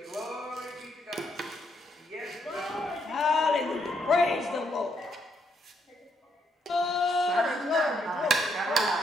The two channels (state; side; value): normal; both; correlation 0.75